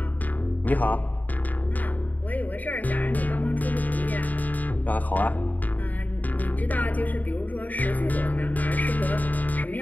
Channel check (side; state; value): right; late; 0.080 ms